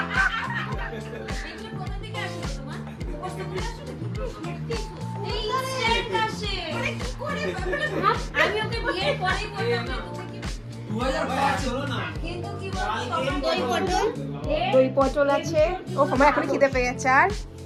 আমি ওকে বিয়ের পরেই বললাম তুমি কি 2005 হলো না কিন্তু কি বলছো দই পটল আছে। ও আমার এখন খিদে পেয়ে গেছে। আর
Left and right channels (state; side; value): identical; both; correlation 1.00